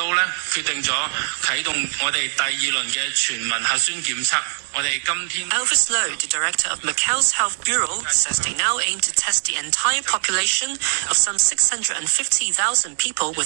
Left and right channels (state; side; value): silent; left; digital silence